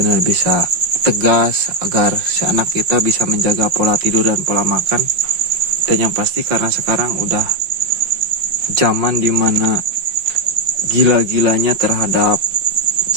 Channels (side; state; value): left; late; 5.6 ms